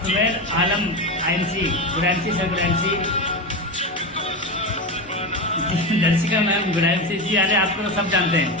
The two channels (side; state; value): both; normal; correlation 0.19